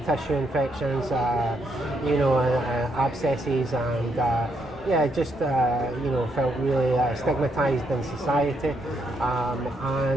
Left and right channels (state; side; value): normal; both; correlation 0.77